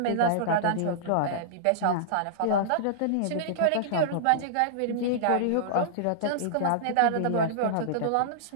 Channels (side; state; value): both; different; correlation -0.02